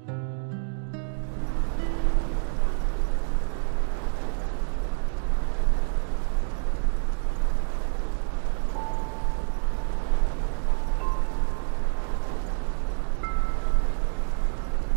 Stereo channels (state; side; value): silent; left; digital silence